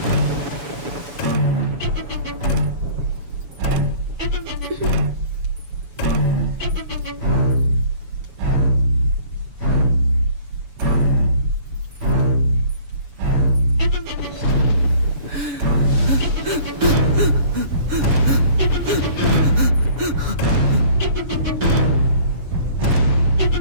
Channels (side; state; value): left; late; 7.0 ms